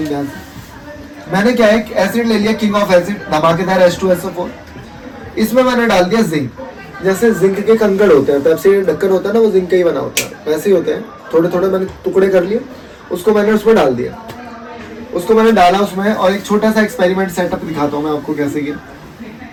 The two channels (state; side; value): identical; both; correlation 1.00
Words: ध्यान से। मैंने क्या है, एसिड ले लिया, किंग ऑफ एसिड, धमाकेदार H2SO4। इसमें मैंने डाल दिया जिंक। जैसे जिंक के कंकड़ होते हैं, पेप्सी ढक्कन होता है ना, वो जिंक का ही बना होता है, वैसे ही होते हैं। थोड़े थोड़े मैंने टुकड़े कर लिए, उसको मैंने उसमें डाल दिया। उसको मैंने डाला उसमें, और एक छोटा सा एक्सपेरिमेंट सेटअप दिखाता हूँ मैं आपको कैसे किया।